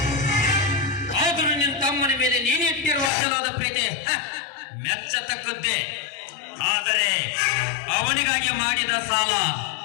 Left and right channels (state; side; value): drops out; right; at 3.1 s